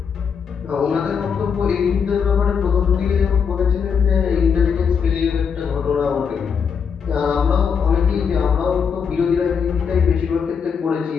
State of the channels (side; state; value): right; quieter; 6.6 dB